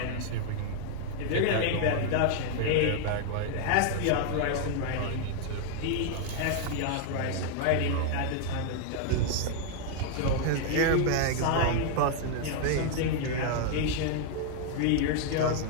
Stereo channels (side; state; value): both; different; correlation 0.00